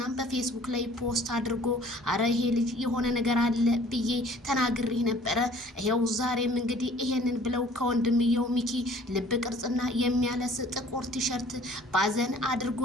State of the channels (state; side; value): normal; both; correlation 0.52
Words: በፌስቡክ ላይ ፖስት አድርጎ አረ ይሄ ልጅ የሆነ ነገር አለ ብዬ ተናግሬ ነበረ። ይሄው ዛሬም እንግዲህ ይሄንን ብለው ከወንድምየው ሚኪ ልብ ቅርጽና የሚያለስ ጥቁር ቲሸርት ባዘን